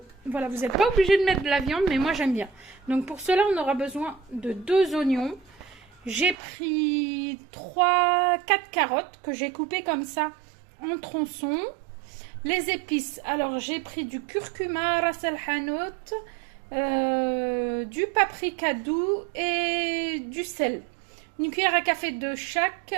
Voilà, vous n'êtes pas obligé de mettre de la viande, mais moi j'aime bien. Donc pour cela on aura besoin de 2 oignons. J'ai pris 4 carottes que j'ai coupées comme ça en tronçons. Les épices, alors j'ai pris du curcuma, ras el hanout, du paprika doux et du sel. Une cuillère à café de chaque,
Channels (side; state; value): left; drops out; at 6.4 s